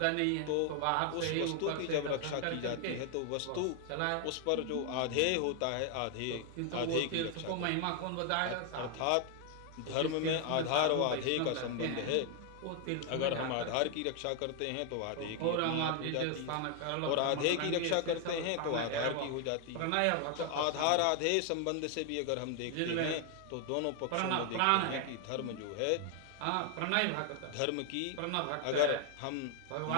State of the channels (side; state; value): both; different; correlation 0.00